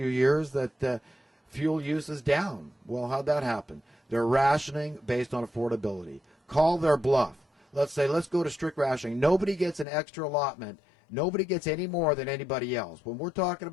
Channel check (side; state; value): right; drops out; at 9.9 s